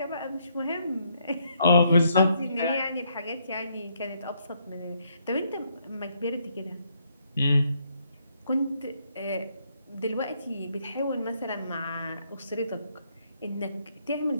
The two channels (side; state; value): both; inverted; correlation -0.73